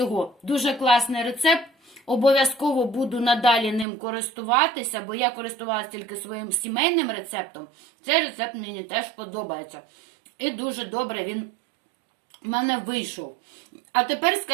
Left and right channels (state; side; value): drops out; left; at 3.9 s